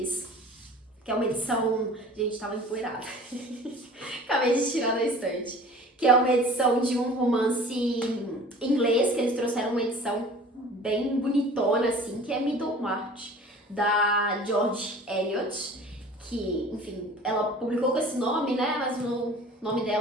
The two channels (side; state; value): both; normal; correlation 0.44